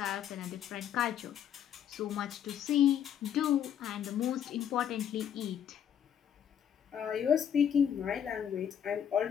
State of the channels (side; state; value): right; quieter; 9.1 dB